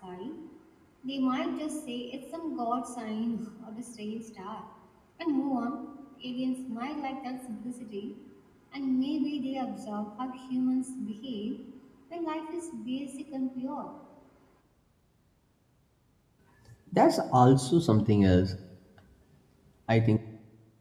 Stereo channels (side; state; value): both; identical; correlation 1.00